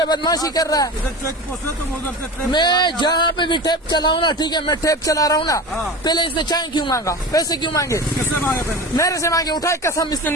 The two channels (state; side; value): normal; both; correlation 0.31